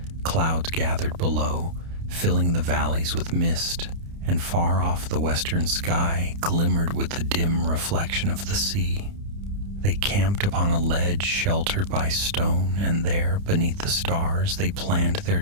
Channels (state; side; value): late; left; 30 ms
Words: Clouds gathered below, filling the valleys with mist, and far off the western sky glimmered with the dim reflection of the sea. They camped upon a ledge sheltered by stone, and there, beneath the stars, they planned their